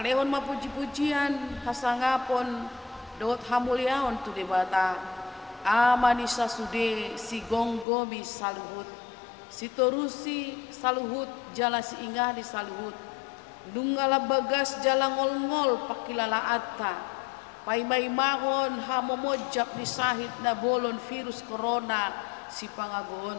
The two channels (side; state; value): right; drops out; at 7.9 s